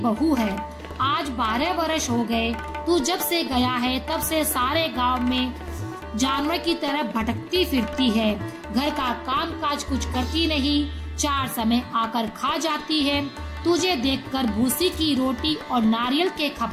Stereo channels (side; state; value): both; identical; correlation 1.00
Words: है। आज 12 वर्ष हो गए, तू जब से गया है तब से सारे गांव में जानवर की तरह भटकती फिरती है। घर का काम काज कुछ करती नहीं, 4 समय आकर खा जाती है। तुझे देखकर भूसी की रोटी और नारियल के